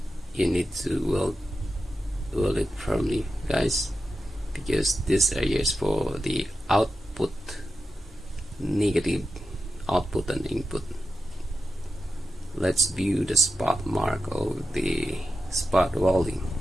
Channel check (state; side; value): normal; both; correlation 0.90